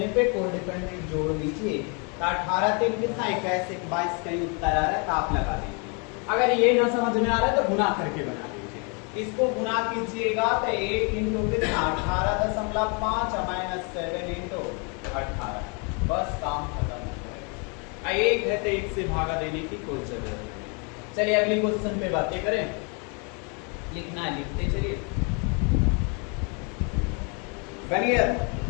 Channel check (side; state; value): right; quieter; 34.8 dB